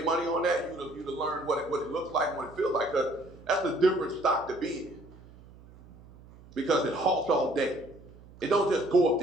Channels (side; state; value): right; noise; hum, 22 dB below the sound